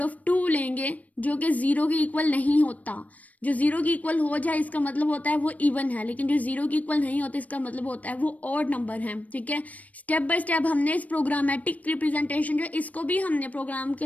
of 2 लेंगे जो कि 0 के इक्वल नहीं होता। जो 0 के इक्वल हो जाए इसका मतलब होता है वो इवन है, लेकिन जो 0 के इक्वल नहीं होता इसका मतलब होता है वो ऑड नंबर है। ठीक है, स्टेप बाय स्टेप हमने इस प्रोग्रामेटिक रिप्रेजेंटेशन जो इसको भी हमने प्रोग्राम के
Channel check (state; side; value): late; right; 0.071 ms